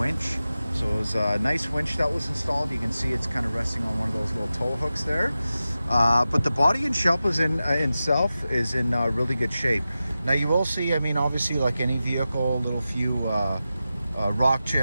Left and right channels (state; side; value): inverted; both; correlation -0.93